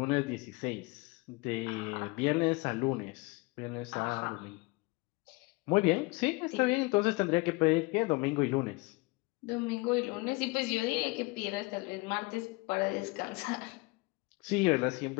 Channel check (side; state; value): right; quieter; 25.4 dB